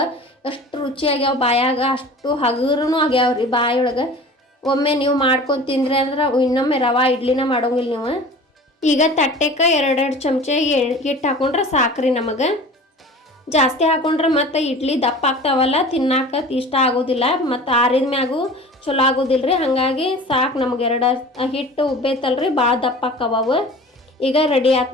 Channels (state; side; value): normal; both; correlation 0.40